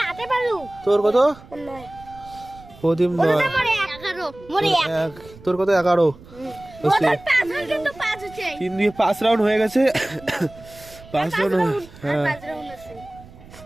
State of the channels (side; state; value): right; noise; rumble, 20 dB below the sound